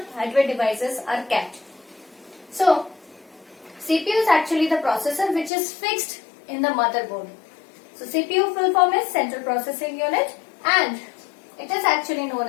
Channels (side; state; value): right; drops out; at 5.5 s